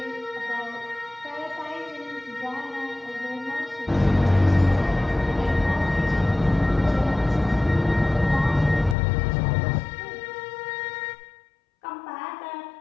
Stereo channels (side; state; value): right; drops out; at 9.0 s